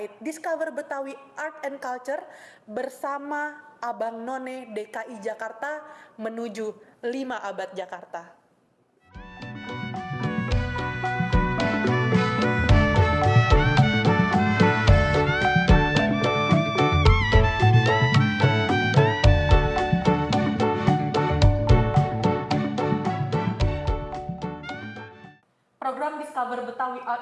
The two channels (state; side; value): identical; both; correlation 1.00